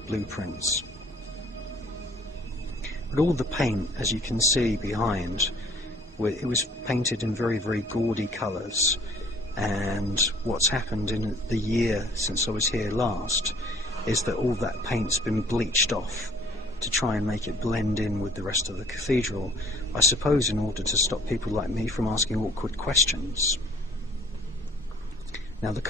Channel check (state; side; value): normal; both; correlation 0.56